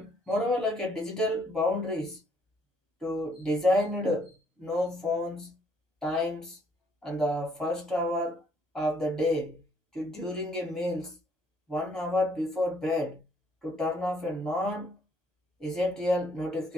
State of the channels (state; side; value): normal; both; correlation 0.67